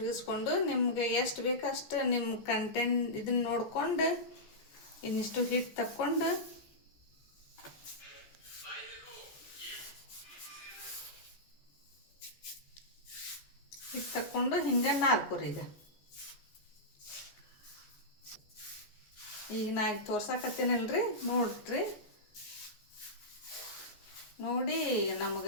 ನಿಮ್ಗೆ ಎಷ್ಟು ಬೇಕು ಅಷ್ಟು ನಿಮ್ಮ ಕಂಟೆಂಟ್ ಇದನ್ನ ನೋಡ್ಕೊಂಡು ಇನ್ನಿಷ್ಟು ಹಿಟ್ಟು ತಕ್ಕೊಂಡು ಹಿಂಗೆ ನಾಲ್ಕುರಿ. ಈಗ ನಾ ಈಗ ತೋರ್ಸಾಕತ್ತೀನಲ್ರಿ, ನೋಡ್ರಿ. ನೋಡಿ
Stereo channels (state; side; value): late; right; 14 ms